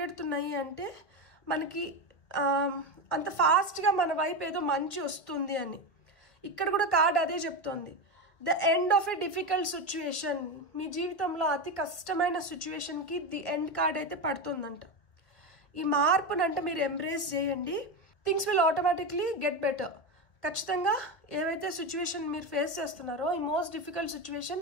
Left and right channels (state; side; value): late; right; 1.4 ms